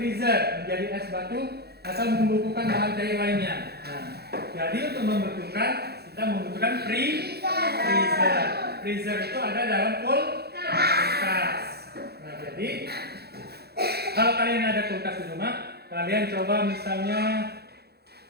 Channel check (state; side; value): late; left; 0.47 ms